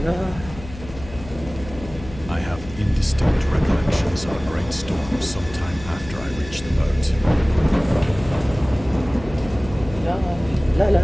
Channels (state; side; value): noise; left; hum, 14 dB below the sound